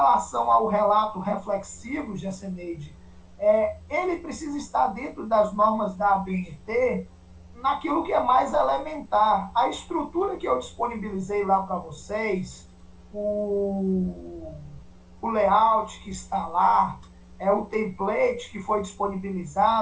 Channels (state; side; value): identical; both; correlation 1.00